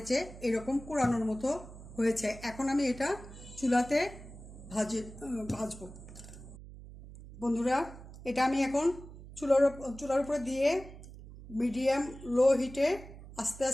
যে এরকম কুড়ানোর মতো হয়েছে। এখন আমি এটা চুলাতে ভাজবো। বন্ধুরা, এটা আমি এখন চুলার উপরে দিয়ে মিডিয়াম লো হিটে আস্তে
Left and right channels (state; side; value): noise; right; hum, 16 dB below the sound